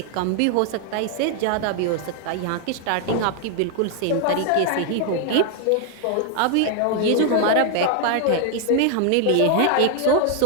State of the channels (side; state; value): both; different; correlation 0.00